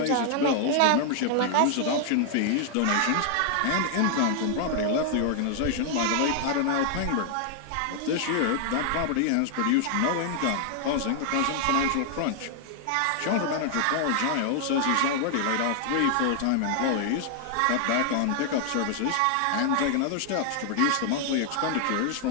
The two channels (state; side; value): different; both; correlation 0.00